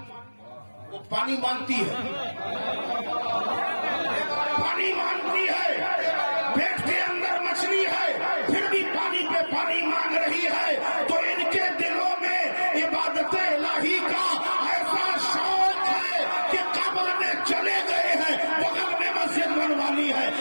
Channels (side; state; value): both; inverted; correlation -1.00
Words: وہ پانی مانگتی ہے، پانی مانگتی ہے. پیٹ کے اندر مچھلی ہے پھر بھی پانی پہ پانی مانگ رہی ہے. تو ان کے دلوں میں عبادت الہی کا ایسا شوق ہے کہ قبر میں چلے گئے ہیں، بغل میں مسجد بنوانی ہے،